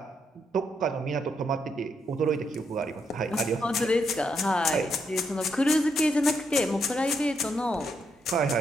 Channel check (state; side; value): normal; both; correlation 0.78